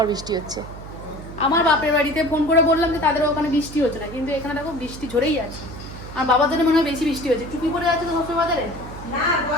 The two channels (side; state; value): right; noise; hum, 13 dB below the sound